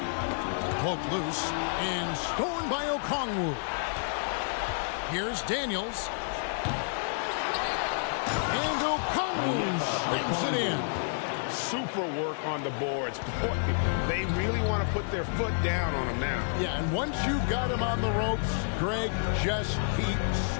Poked loose and stolen by Okongwu. Here's Daniels. And Okongwu slams it in. Super work on the boards. Boy, they really want to put their foot down on him now. Yeah, and once you've got him on the ropes, Greg, just keep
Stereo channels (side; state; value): right; silent; digital silence